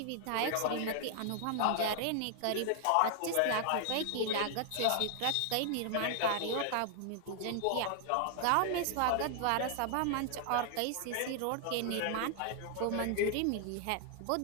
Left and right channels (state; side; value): different; both; correlation 0.00